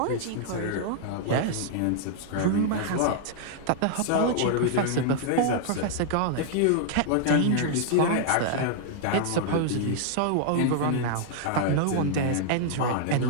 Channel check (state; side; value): different; both; correlation 0.00